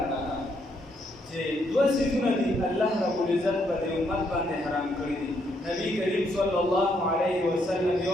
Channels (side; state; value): both; normal; correlation 0.74